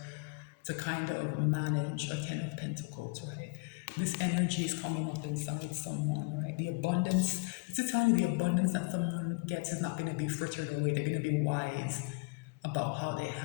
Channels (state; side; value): quieter; right; 28.7 dB